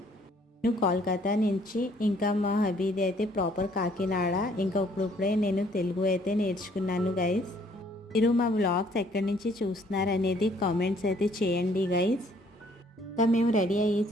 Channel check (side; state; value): both; normal; correlation 0.62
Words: నేను కోల్కతా నుంచి, ఇంకా మా హబీది అయితే ప్రాపర్ కాకినాడ. ఇంకా ఇప్పుడే నేను తెలుగు అయితే నేర్చుకున్నాను గైస్. మీరు మా వ్లాగ్స్ ఎక్కడి నుంచి చూస్తున్నారు అనేది కామెంట్స్ అయితే చేయండి గైస్. ఇంకా మేము రెడీ